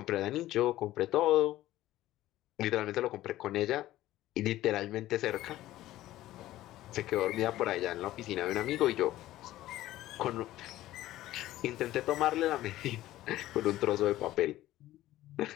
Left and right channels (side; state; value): right; quieter; 15.1 dB